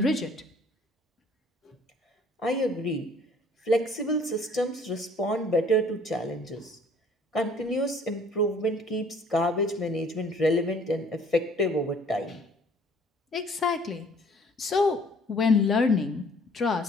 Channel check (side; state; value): both; normal; correlation 0.56